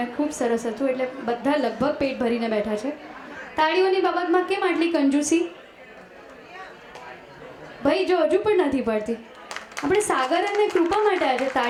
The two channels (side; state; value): both; identical; correlation 1.00